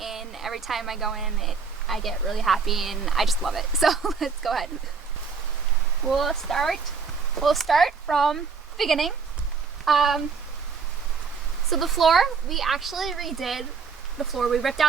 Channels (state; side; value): quieter; left; 5.3 dB